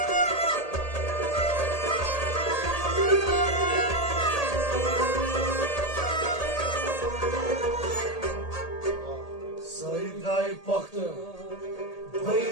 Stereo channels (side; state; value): right; late; 1.8 ms